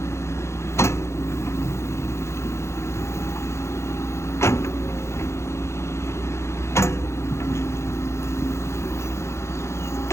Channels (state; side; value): late; right; 0.13 ms